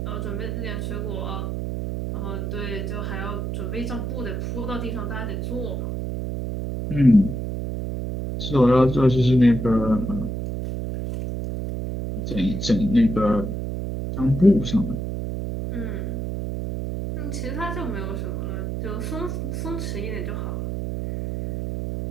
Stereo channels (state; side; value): noise; right; hum, 3 dB below the sound